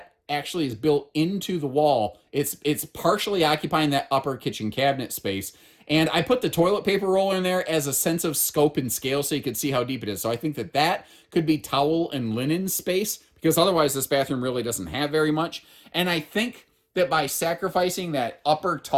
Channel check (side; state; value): both; identical; correlation 1.00